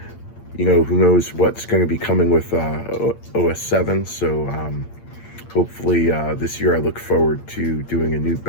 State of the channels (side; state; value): right; late; 8.7 ms